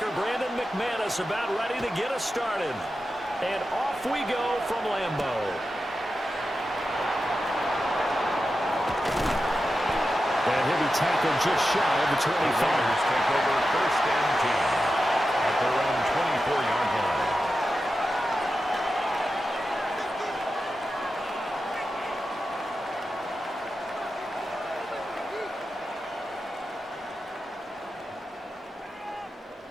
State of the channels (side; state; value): both; normal; correlation 0.91